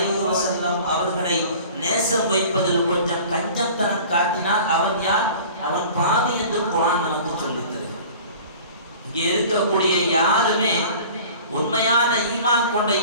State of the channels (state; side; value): inverted; both; correlation -0.44